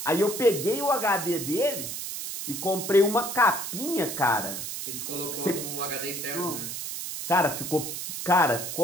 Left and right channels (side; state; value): right; noise; hiss, 6 dB below the sound